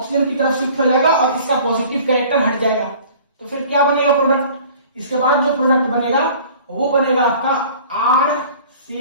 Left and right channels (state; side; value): inverted; both; correlation -0.48